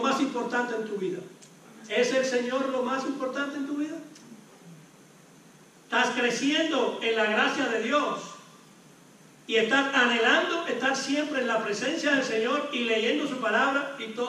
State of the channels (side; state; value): both; identical; correlation 1.00